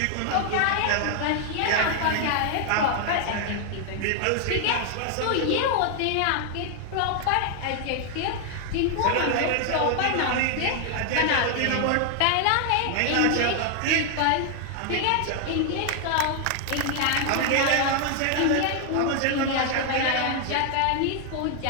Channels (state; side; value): different; both; correlation 0.00